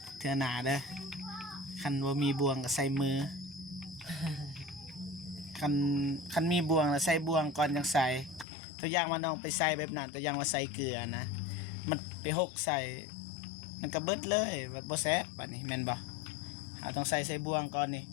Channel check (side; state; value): right; drops out; at 8.5 s